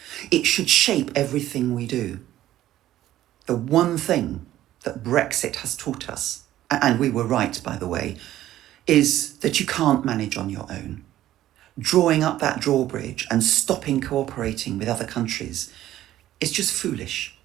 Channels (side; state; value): left; quieter; 13.5 dB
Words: It should shape everything we do. The one thing that Brexit has taught us, and we were right, by the way, is that you can't manage on your own. Drawing up that drawbridge and stopping cooperating with other countries is just foolish.